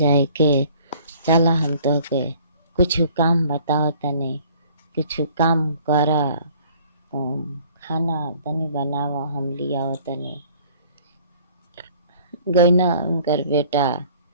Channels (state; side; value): inverted; both; correlation -0.54